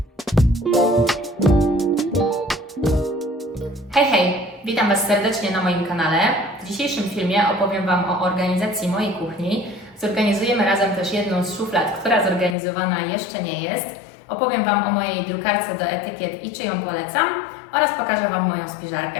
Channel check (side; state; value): right; drops out; at 12.6 s